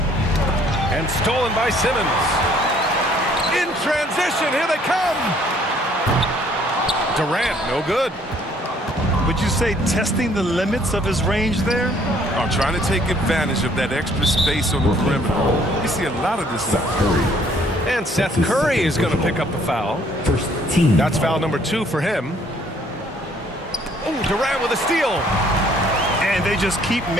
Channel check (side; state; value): both; normal; correlation 0.62